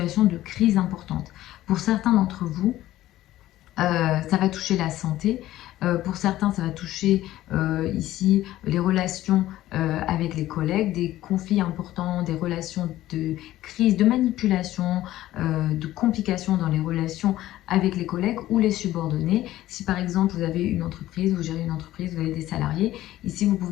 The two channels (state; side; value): quieter; right; 14.8 dB